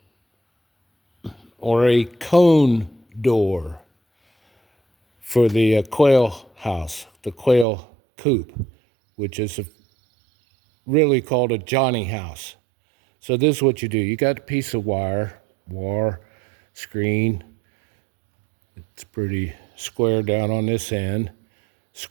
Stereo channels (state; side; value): drops out; left; at 7.7 s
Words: or a cone door for the quail house, the quail coop, which is really called a Johnny house. So this is what you do. You got a piece of wire, screen. It's pretty square down on this end,